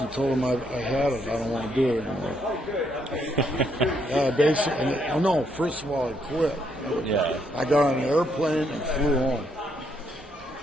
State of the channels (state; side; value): normal; both; correlation 0.74